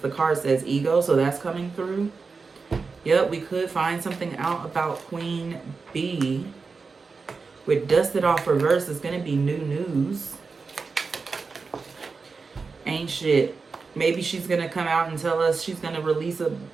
card says ego, so that's coming through. Yep, we could find something out about Queen Bee. With Dusted Off reverse, it's going to be new news. Ain't shit. Maybe she's going to come out and tell us she's going to release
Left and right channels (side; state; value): left; quieter; 4.6 dB